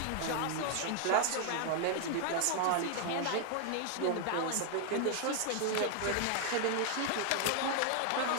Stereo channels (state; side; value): different; both; correlation 0.00